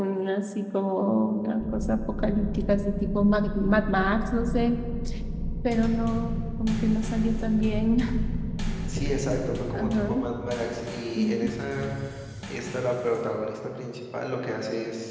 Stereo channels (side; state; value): both; identical; correlation 1.00